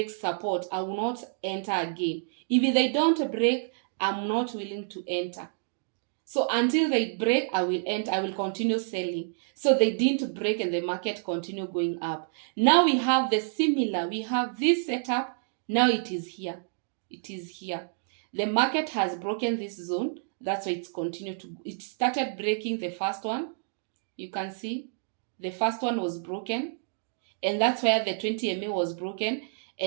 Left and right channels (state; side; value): silent; left; digital silence